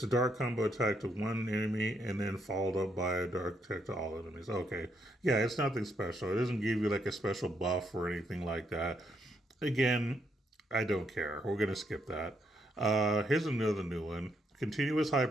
a dark combo attack to one enemy and then followed up by a dark attack to all enemies. Okay. Yeah, it's nothing special. It doesn't give you like a special buff or anything like that. Again, I don't care. We're going to skip that. Here's another new one. Continuous high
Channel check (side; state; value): both; normal; correlation 0.76